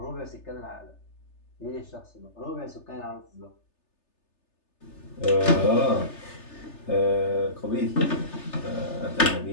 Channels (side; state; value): right; late; 3.3 ms